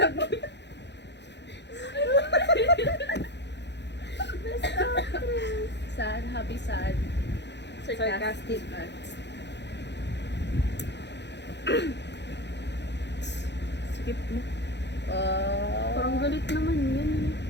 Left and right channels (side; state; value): right; late; 0.50 ms